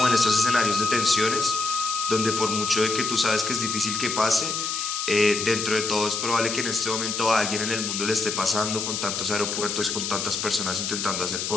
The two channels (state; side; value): noise; left; hiss, 3 dB below the sound